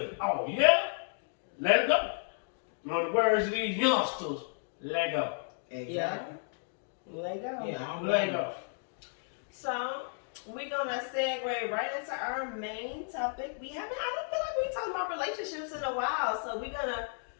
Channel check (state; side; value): silent; right; digital silence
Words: Oh, yeah? Let it go. In the words of these youngsters, let go. Exactly. Let go. Yeah, I don't Let blame you. go. So we're gonna segue right into our main topic. I don't feel like we talked about relationships in a while, so we're gonna